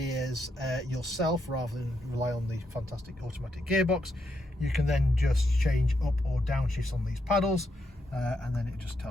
yourself rather than rely on the fantastic automatic gearbox, you can then just change up or down shifts on these paddles. And then it just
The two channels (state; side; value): normal; both; correlation 0.80